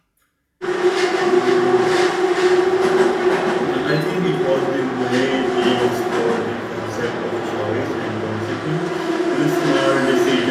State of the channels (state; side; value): identical; both; correlation 1.00